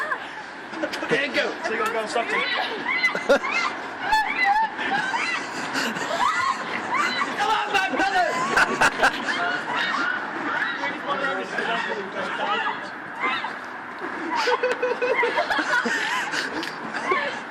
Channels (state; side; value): identical; both; correlation 1.00